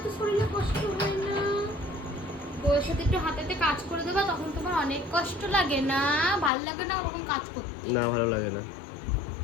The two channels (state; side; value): drops out; right; at 6.5 s